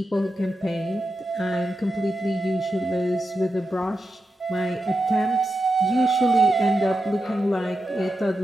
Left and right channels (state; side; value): normal; both; correlation 0.88